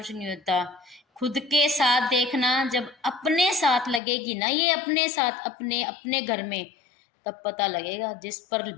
नहीं होता। खुद के साथ देखना, जब अपने साथ लगेगी ना ये, अपने साथ अपने अपने घर में, तब पता लगेगा। जिस पर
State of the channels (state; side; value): drops out; right; at 4.0 s